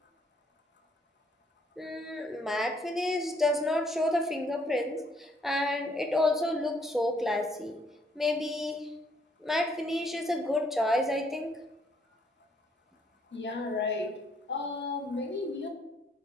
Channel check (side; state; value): both; normal; correlation 0.68